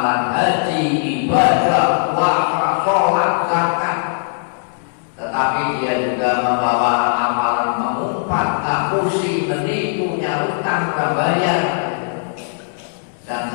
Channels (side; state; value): right; silent; digital silence